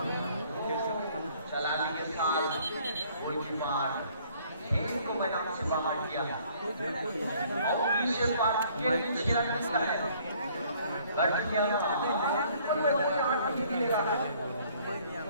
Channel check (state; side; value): inverted; both; correlation -0.60